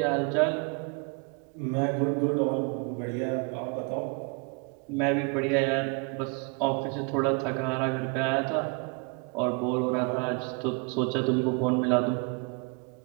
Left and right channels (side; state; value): left; quieter; 33.2 dB